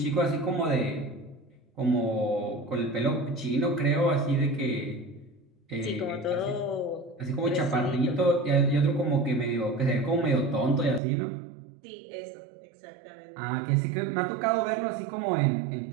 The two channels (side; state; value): left; drops out; at 11.0 s